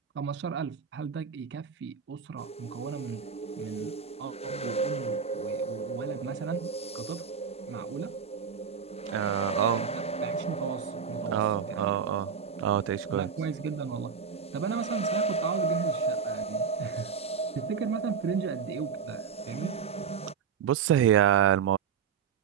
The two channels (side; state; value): left; quieter; 6.7 dB